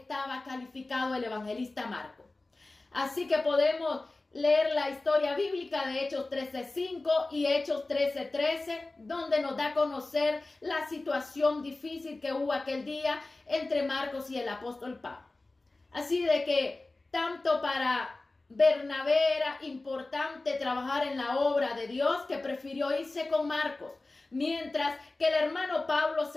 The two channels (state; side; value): quieter; right; 3.1 dB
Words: calificado el evangelista Marcos. Así que podemos leer la historia bíblica de Hechos 13:5 y Hechos 13:13, donde nos da a conocer la situación difícil que hubo aquel día entre Marcos y el apóstol Pablo. Así de que tanto para Bernabé era importante trabajar en la obra de Dios, que prefirió irse con Marcos, mientras que el hermano Pablo